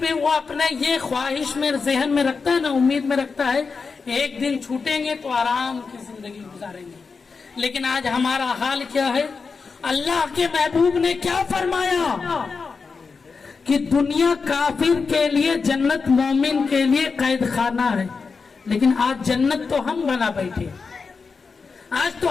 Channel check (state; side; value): quieter; right; 4.9 dB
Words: بھی وہ اپنا یہ خواہش میں ذہن میں رکھتا ہے نا, امید میں رکھتا ہے ایک دن چھوٹیں گے تو آرام کی زندگی گزاریں گے. لیکن آج ہمارا حال کیا ہے؟ اللہ کے محبوب نے کیا فرمایا کہ دنیا کافر کے لیے جنت مومن کے لیے قید خانہ ہے, لیکن آج جنت تو ہم بنا بیٹھے, آج تو